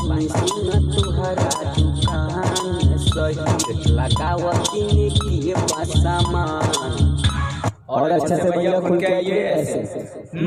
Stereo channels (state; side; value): identical; both; correlation 1.00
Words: और अच्छे से भैया खुल के आइए ऐसे।